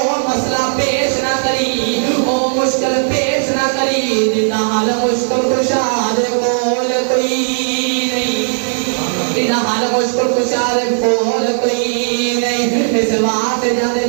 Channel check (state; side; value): silent; left; digital silence